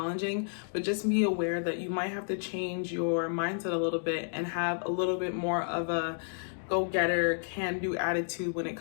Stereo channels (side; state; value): right; silent; digital silence